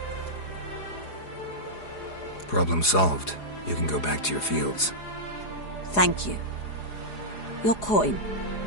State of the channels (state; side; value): late; right; 4.8 ms